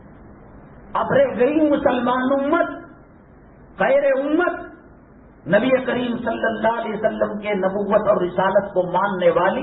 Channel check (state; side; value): identical; both; correlation 1.00